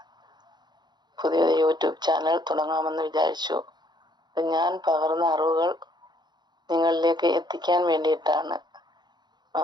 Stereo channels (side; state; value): left; late; 0.21 ms